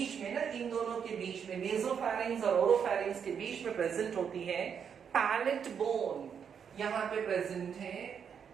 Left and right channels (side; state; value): left; quieter; 7.3 dB